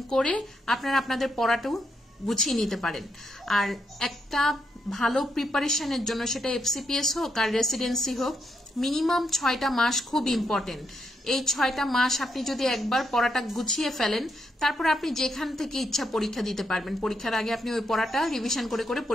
করে আপনারা আপনাদের পড়াটাও গুছিয়ে নিতে পারেন। আর একটা ভালো প্রিপারেশনের জন্য সেটা এফসিপিএস হোক আর রেসিডেন্সি হোক, মিনিমাম 6টা মাস খুব ইম্পর্টেন্ট। এই 6টা মাস আপনি যদি একবার পড়াটা গুছিয়ে ফেলেন, তারপর আপনি যেখান থেকে ইচ্ছা পরীক্ষা দিতে পারবেন। পরীক্ষার আগে আপনি ওই পড়াটা রিভিশন করে করে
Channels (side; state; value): both; normal; correlation 0.79